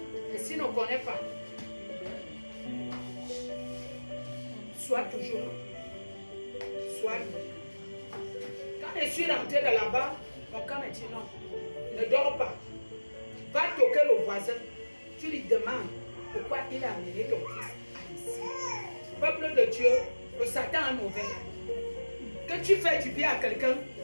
Et s'il ne connaît pas, sois toujours là. Sois là. Quand je suis rentré de là-bas, mon camp m'a dit non, ne dors pas. Va toquer le voisin. Tu lui demandes pourquoi il a amené ton fils ici. Peuple de Dieu, le Satan est mauvais. Que tu fais du bien à quelqu'un,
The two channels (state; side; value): inverted; both; correlation -1.00